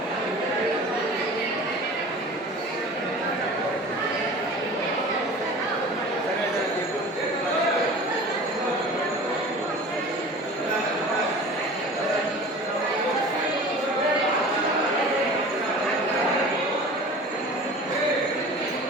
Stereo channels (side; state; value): both; normal; correlation 0.40